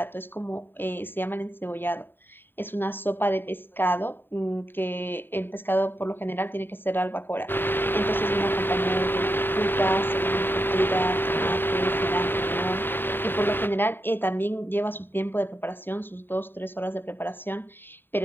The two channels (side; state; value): right; late; 0.098 ms